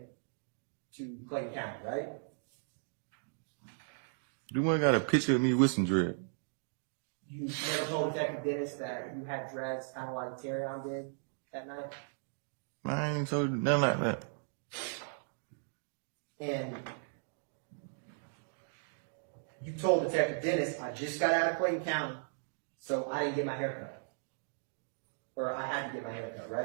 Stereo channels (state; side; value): silent; left; digital silence